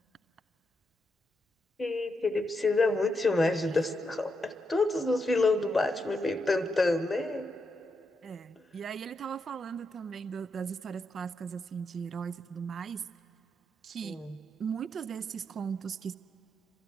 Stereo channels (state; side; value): normal; both; correlation 0.83